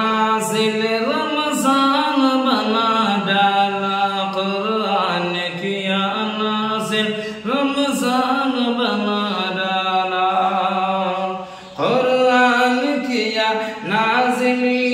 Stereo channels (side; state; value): both; identical; correlation 1.00